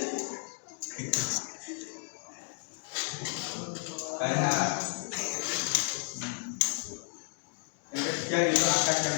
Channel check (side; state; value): right; silent; 56 dB below the other